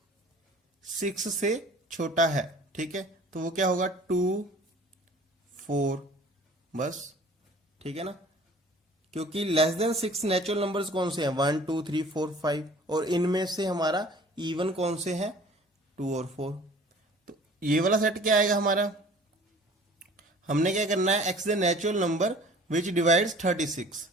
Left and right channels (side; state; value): both; normal; correlation 0.48